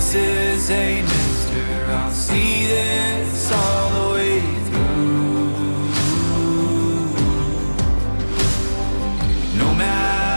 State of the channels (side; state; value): both; inverted; correlation -1.00